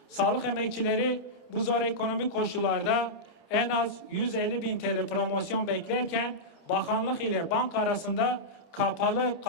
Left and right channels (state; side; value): normal; both; correlation -0.10